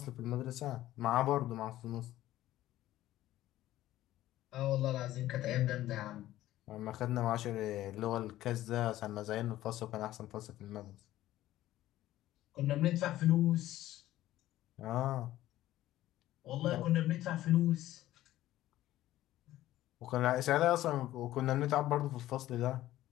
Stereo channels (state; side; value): quieter; right; 14.6 dB